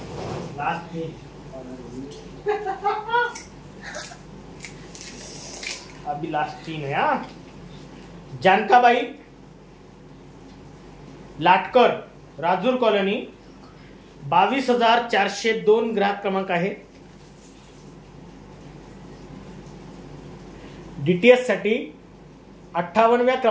अभी लास्ट 3 है. जानकाबाई लाटकर राजूर कॉलनी 22,402 ग्राहक क्रमांक आहे. डीटीएस साठी 58व्या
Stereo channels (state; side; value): identical; both; correlation 1.00